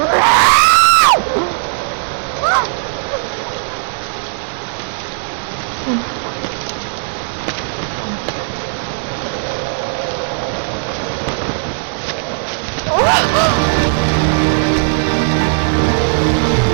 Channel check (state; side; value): silent; left; digital silence